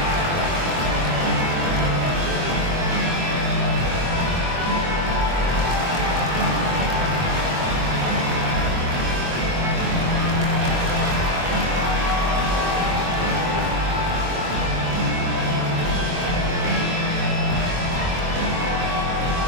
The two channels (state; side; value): late; left; 23 ms